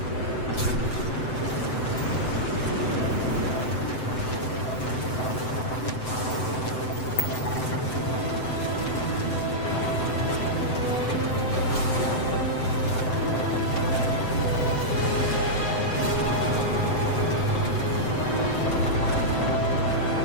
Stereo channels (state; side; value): late; right; 7.8 ms